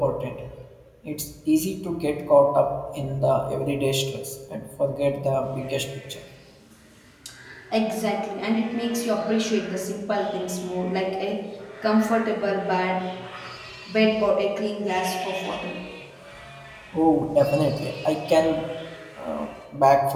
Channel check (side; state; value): both; identical; correlation 1.00